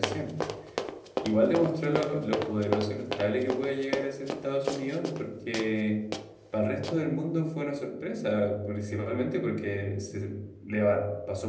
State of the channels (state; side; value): identical; both; correlation 1.00